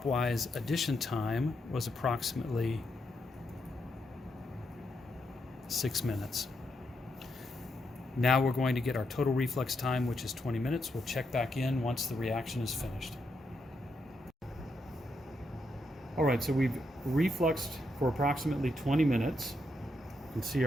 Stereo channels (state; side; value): normal; both; correlation 0.81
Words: addition time was approximately 6 minutes. Now we're going to get our total reflux time, which is 20 minutes. We'll check back in once the reaction is finished. All right, so we've refluxed for approximately 20 minutes. You can see